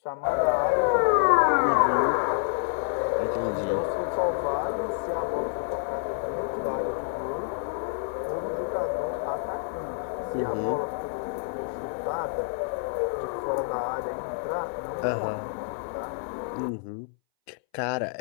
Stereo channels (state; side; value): silent; right; 59 dB below the other